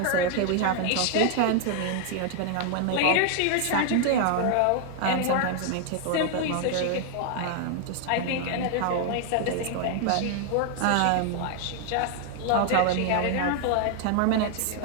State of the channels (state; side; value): different; both; correlation 0.00